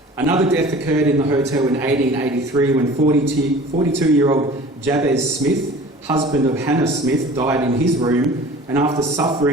Another death occurred in the hotel in 1883 when 42-year-old Jabez Smith, husband of Hannah Smith, died in his room and after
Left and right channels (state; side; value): normal; both; correlation 0.44